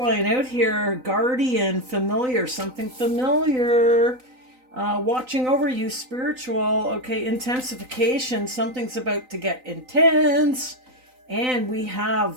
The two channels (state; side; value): late; left; 3.9 ms